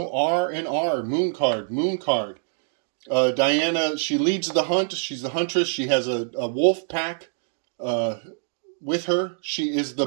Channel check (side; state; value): left; silent; digital silence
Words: R and R, moon card, moon card. Diana, she leads the hunt. She's the huntress. She has a wolf pack with her. She is